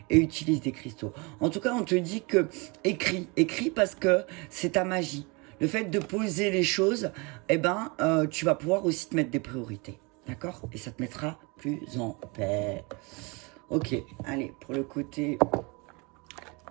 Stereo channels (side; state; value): left; quieter; 28.6 dB